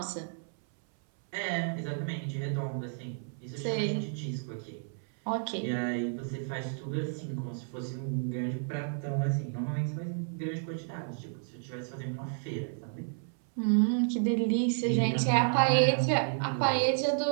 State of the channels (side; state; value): left; silent; 57 dB below the other